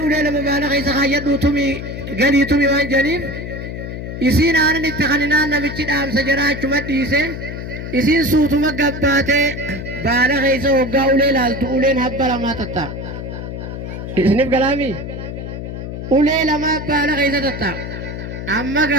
ulee lama baala keessa kaayyadhuu tumi galii tumi waan janiif isiin aanan itti kaninaan namichi dhaamsa jaraa achuma dhiise isiin suutuma gabbaatee baala keessa hoggaa ulee laaltu uleen habba lamaa tatta isiniif galaami ulee lamaa baala keessa tatta amma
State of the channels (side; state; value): left; noise; hum, 7 dB below the sound